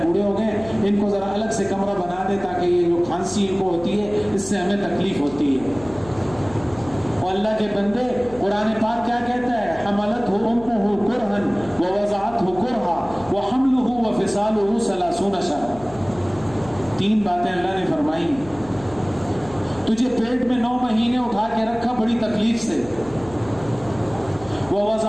بوڑھے ہو گئے، ان کو ذرا الگ سے کمرہ بنا دے تاکہ یہ جو کھانسی ان کو ہوتی ہے اس سے ہمیں تکلیف ہوتی ہے. اور اللہ کے بندے قرآن پاک کیا کہتا ہے؟ حملتہ امہ کرہا ووضعتہ کرہا وحملہ وفصالہ 30 شہرا. 3 باتیں اللہ نے فرمائی. تجھے پیٹ میں 9 مہینے اٹھا کے رکھا بڑی تکلیف سے،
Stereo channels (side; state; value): left; noise; hum, 19 dB below the sound